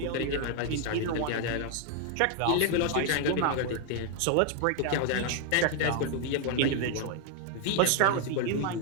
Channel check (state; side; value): different; both; correlation 0.00